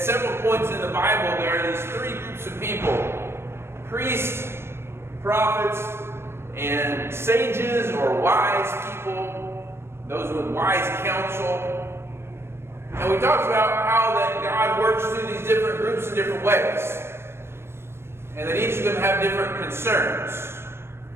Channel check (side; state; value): left; late; 0.12 ms